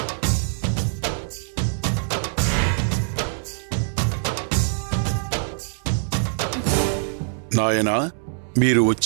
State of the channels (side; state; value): left; silent; digital silence